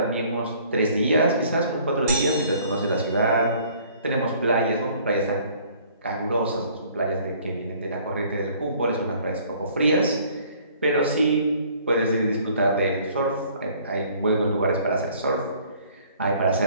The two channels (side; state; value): both; inverted; correlation -0.56